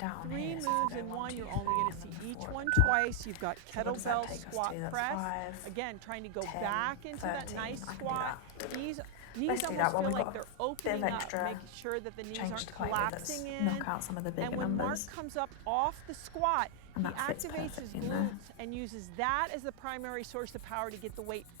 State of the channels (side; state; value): both; different; correlation 0.00